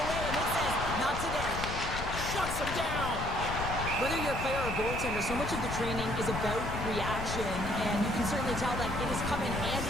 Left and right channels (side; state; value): left; noise; rumble, 5 dB below the sound